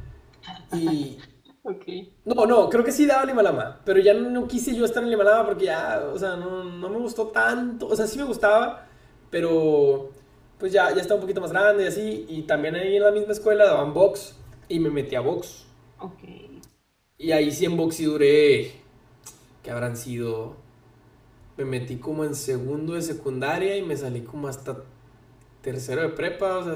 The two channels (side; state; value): both; identical; correlation 1.00